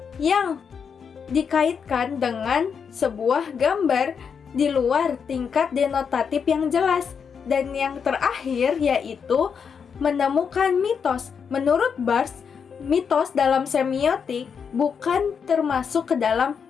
yang dikaitkan dengan sebuah gambar di luar tingkat denotatif yang jelas. Dan yang terakhir yaitu menemukan mitos. Menurut Barthes, mitos dalam semiotik bukan termasuk ke dalam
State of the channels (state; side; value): quieter; right; 6.6 dB